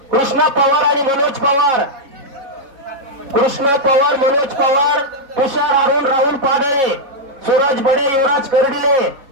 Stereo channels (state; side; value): late; left; 3.6 ms